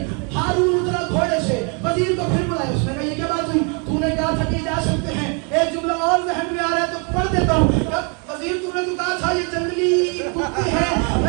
وزیر کو پھر بلایا. اس نے کہا یہ کیا بات ہوئی؟ تو نے کہا تھا کہ جا سکتے ہیں. ایک جملہ اور ذہن میں آ رہا ہے تو پڑھ دیتا ہوں. وزیر تو نے تو کہا تھا یہ جنگلی کتے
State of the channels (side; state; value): left; quieter; 35.6 dB